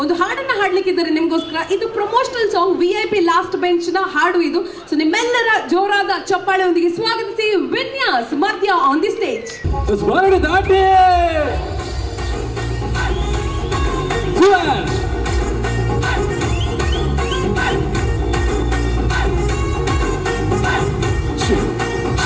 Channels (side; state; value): both; identical; correlation 1.00